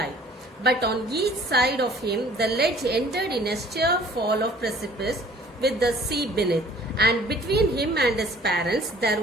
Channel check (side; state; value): both; normal; correlation 0.53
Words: But on each side of him, the ledge ended in a sheer fall of precipice with the sea beneath, and between him and his parents